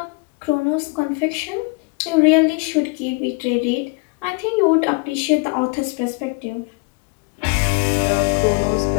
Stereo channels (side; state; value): right; quieter; 30.5 dB